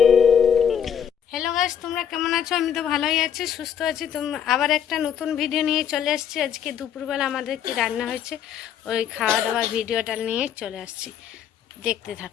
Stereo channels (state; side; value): quieter; right; 8.6 dB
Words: গাইস, তোমরা কেমন আছো? আমি তো ভালোই আছি, সুস্থ আছি। তোমরা আবার একটা নতুন ভিডিও নিয়ে চলে আসছি। আজকে দুপুরবেলা আমাদের কি রান্না হয়েছে ওই খাওয়া দাওয়ার ভিডিওটা নিয়ে চলে আসছি, দেখতে